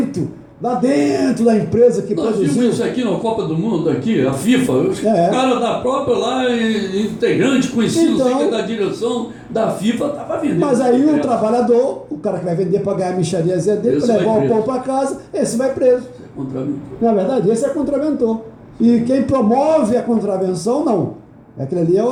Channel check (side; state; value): both; identical; correlation 1.00